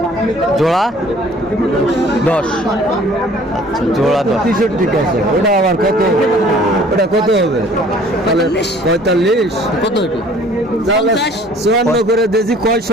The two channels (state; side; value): normal; both; correlation 0.53